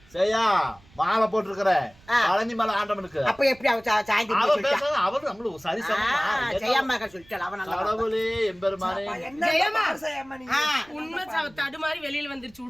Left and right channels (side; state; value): right; noise; rumble, 27 dB below the sound